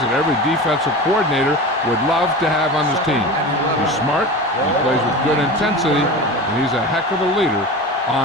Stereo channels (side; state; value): both; normal; correlation 0.30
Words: that every defensive coordinator would love to have on his team. He's smart, he plays with good intensity, and he's a heck of a leader